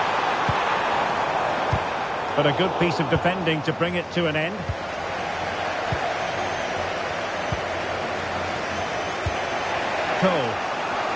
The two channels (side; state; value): both; identical; correlation 1.00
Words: But a good piece of defending to bring it to an end. Cole.